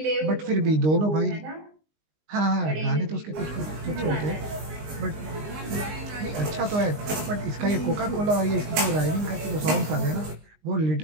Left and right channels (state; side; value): late; left; 19 ms